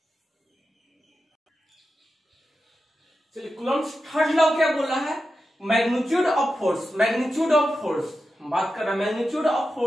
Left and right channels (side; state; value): both; normal; correlation 0.91